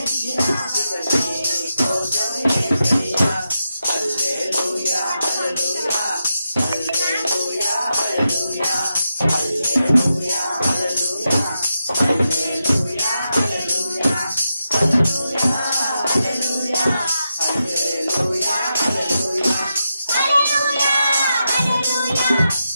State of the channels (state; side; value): inverted; both; correlation -0.87